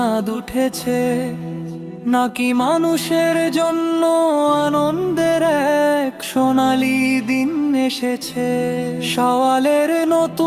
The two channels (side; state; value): both; identical; correlation 1.00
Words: উঠেছে, নাকি মানুষের জন্য আনন্দের এক সোনালি দিন এসেছে। সওয়ালের